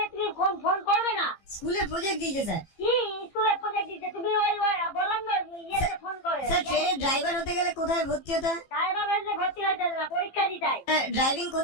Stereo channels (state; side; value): late; right; 15 ms